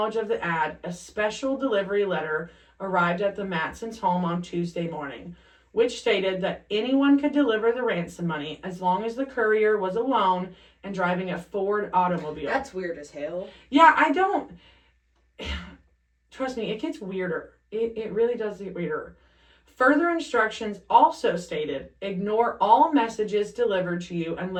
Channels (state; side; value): identical; both; correlation 1.00